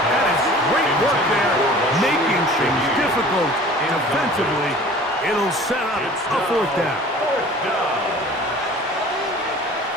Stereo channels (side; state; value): both; normal; correlation 0.45